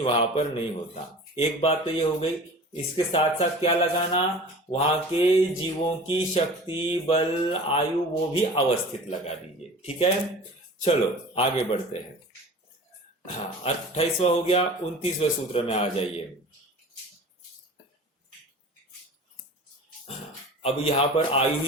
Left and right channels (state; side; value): normal; both; correlation 0.40